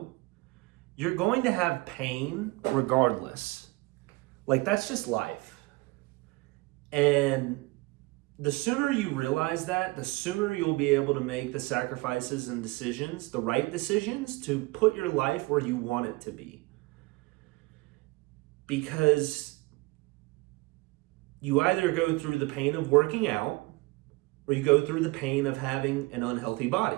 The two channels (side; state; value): left; quieter; 23.4 dB